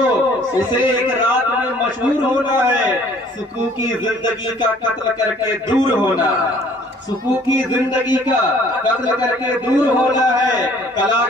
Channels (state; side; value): normal; both; correlation 0.56